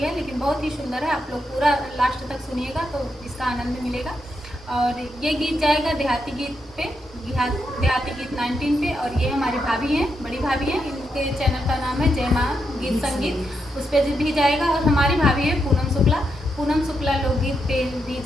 लेकिन बहुत ही सुंदर है। आप लोग पूरा लास्ट तक सुनिएगा तो इसका आनंद मिलेगा। और ये गीत जाएगा देहाती गीत पे, देहाती गीत 19 पे। और ये हमारी भाभी हैं, बड़ी भाभी हैं, इनके चैनल का नाम है जय माँ गीत संगीत, उस पर भी जाएगा। और हमारी भाभी है पूनम शुक्ला लोकगीत पे भी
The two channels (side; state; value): both; normal; correlation 0.83